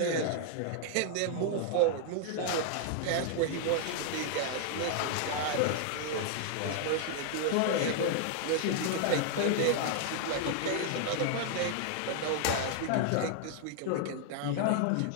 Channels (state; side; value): different; both; correlation 0.00